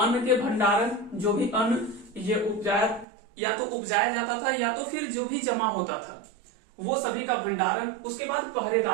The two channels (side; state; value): left; drops out; at 3.1 s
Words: के भंडारण, जो भी अन्न ये या तो उपजाया जाता था या तो फिर जो भी जमा होता था वो सभी का भंडारण, उसके बाद